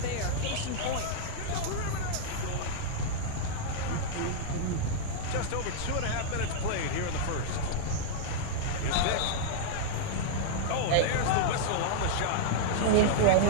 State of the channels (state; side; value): different; both; correlation -0.02